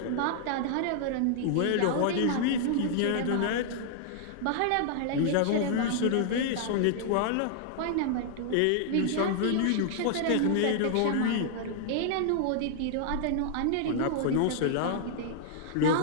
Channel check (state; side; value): different; both; correlation -0.01